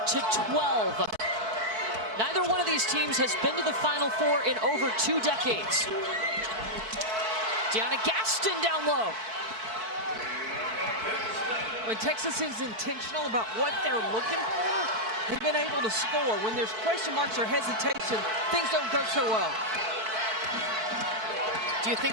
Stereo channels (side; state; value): left; late; 4.6 ms